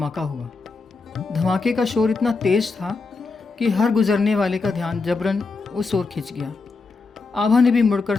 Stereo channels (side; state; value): right; quieter; 4.2 dB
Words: हुआ। धमाके का शोर इतना तेज था कि हर गुजरने वाले का ध्यान जबरन उस ओर खिंच गया। आभा ने भी मुड़कर